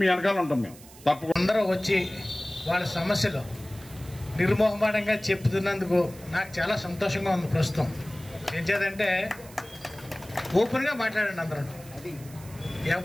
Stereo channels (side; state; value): right; noise; hiss, 20 dB below the sound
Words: వెనకాల ఉంటాం. మేము తప్పకుండా అందరూ వచ్చి వాళ్ళ సమస్యలు నిర్మోహమాటంగా చెప్తున్నందుకు నాకు చాలా సంతోషంగా ఉంది. ప్రస్తుతం ఏం చేద్దంటే ఓపెన్గా మాట్లాడండి అందరూ.